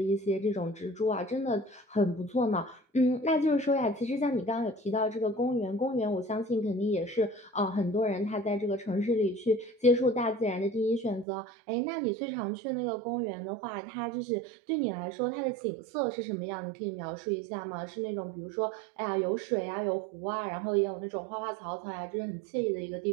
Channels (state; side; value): drops out; left; at 11.2 s